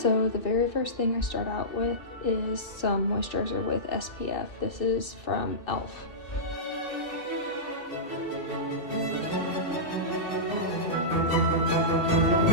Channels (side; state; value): right; late; 2.7 ms